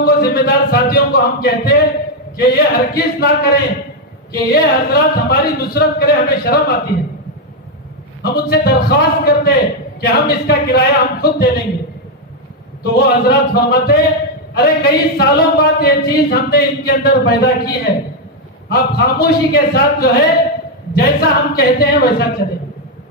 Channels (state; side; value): normal; both; correlation 0.02